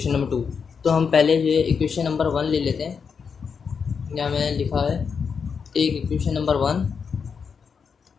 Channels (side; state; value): right; quieter; 6.1 dB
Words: नंबर 2। तो हम पहले जो है इक्वेशन नंबर 1 ले लेते हैं। यहाँ मैंने लिखा है एक इक्वेशन नंबर 1।